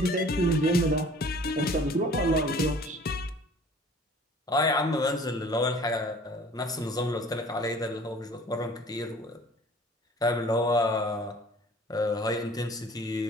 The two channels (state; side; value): normal; both; correlation 0.49